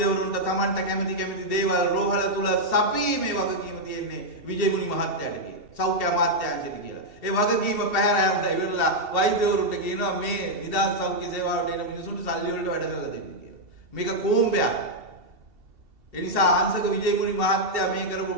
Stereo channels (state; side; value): late; left; 2.7 ms